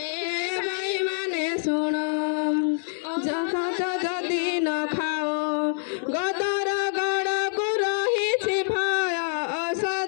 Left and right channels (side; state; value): right; silent; digital silence